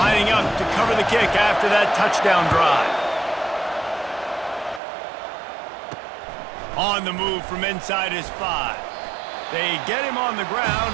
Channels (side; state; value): left; drops out; at 4.8 s